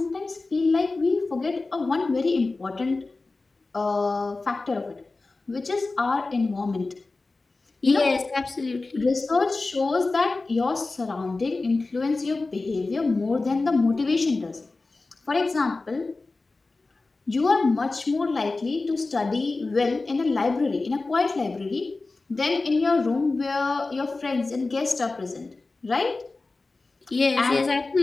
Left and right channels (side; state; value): right; quieter; 3.5 dB